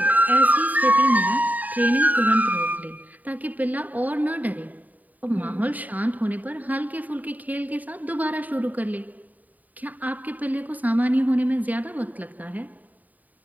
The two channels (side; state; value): left; late; 0.078 ms